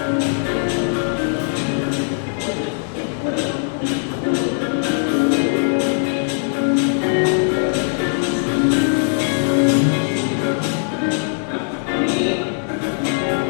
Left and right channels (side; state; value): right; silent; 64 dB below the other